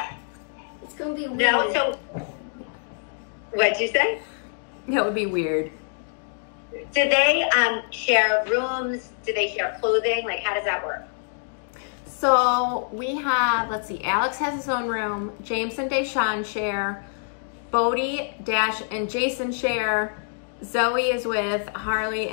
It's going to be weird. No, so, what'd you say? That would be weird. Do they share rooms? Do they share clothing? Like, how does that work? So we have, let's see, Alex has his own room. James and Deshawn share. Bodie, Dash, and Jason share. Zoe is with Harley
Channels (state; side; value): silent; right; digital silence